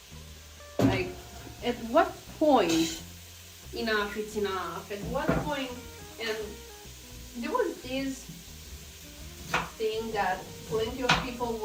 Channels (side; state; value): both; identical; correlation 1.00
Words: Like, at what point enough is enough? At what point? And there was this thing that plenty of people